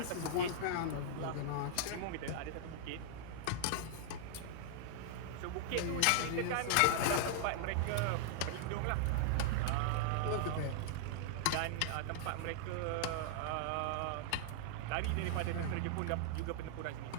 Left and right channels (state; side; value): different; both; correlation -0.01